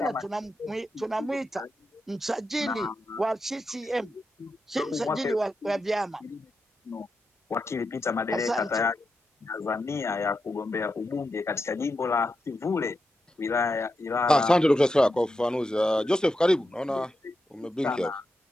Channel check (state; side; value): normal; both; correlation 0.87